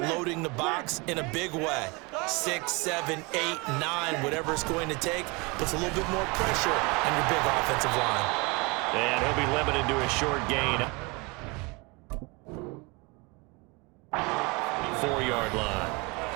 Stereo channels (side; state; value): left; quieter; 27.5 dB